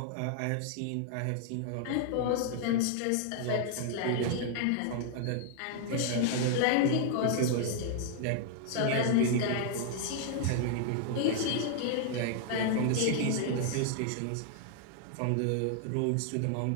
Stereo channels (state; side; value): different; both; correlation 0.00